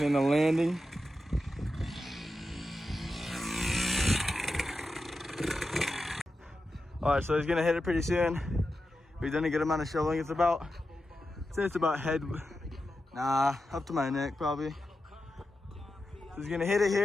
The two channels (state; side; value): normal; both; correlation 0.90